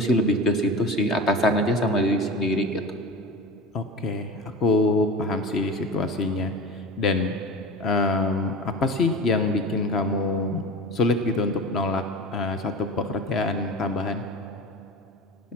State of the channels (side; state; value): both; normal; correlation 0.31